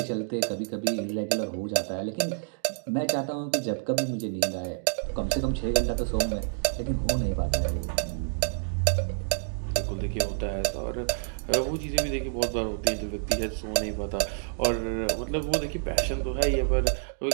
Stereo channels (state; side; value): silent; left; digital silence